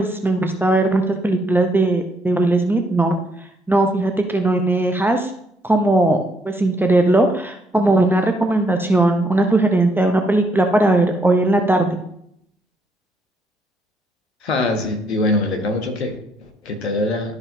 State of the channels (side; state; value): both; normal; correlation 0.72